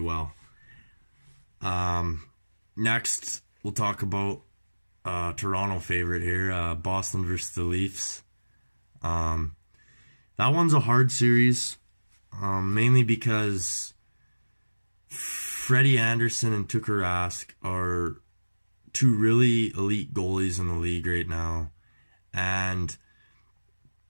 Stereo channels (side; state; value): both; inverted; correlation -1.00